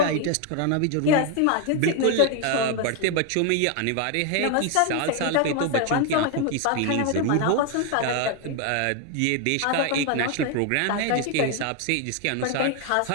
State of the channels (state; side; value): different; both; correlation 0.01